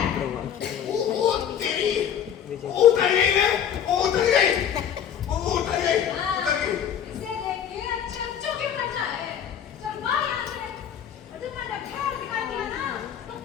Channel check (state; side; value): quieter; right; 9.0 dB